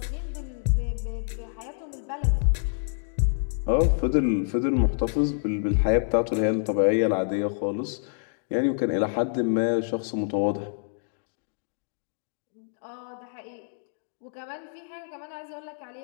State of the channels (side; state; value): right; silent; digital silence